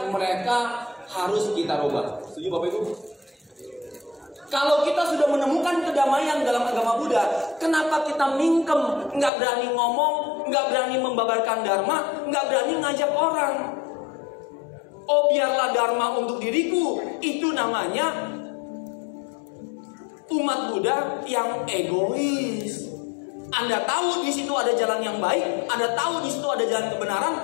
mereka harus kita rubah. Setuju Bapak Ibu? Kalau kita sudah menemukan kedamaian dalam agama Buddha, kenapa kita mingkem, nggak berani ngomong, nggak berani membabarkan dharma, nggak berani ngajak orang? Oh, biarlah dharma untuk diriku. Itu namanya umat Buddha yang egois. Anda tahu di situ ada jalan yang baik, Anda tahu di situ ada jalan kebenaran,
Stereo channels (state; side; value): drops out; right; at 9.3 s